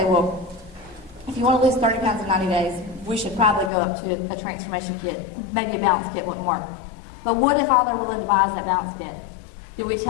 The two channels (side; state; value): right; drops out; at 3.7 s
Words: well, if you want to lose 30 pounds in 90 days, we should probably go up to a transformation kit. Maybe a balance kit wouldn't work. But what if all they're willing to buy is that balance kit? Do we